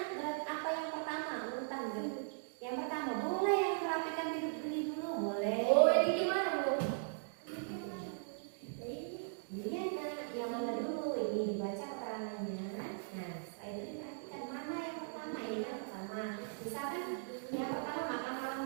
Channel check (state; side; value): silent; left; digital silence